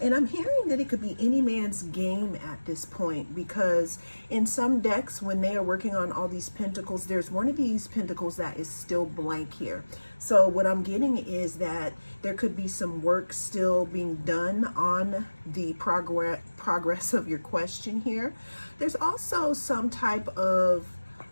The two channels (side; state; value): both; inverted; correlation -1.00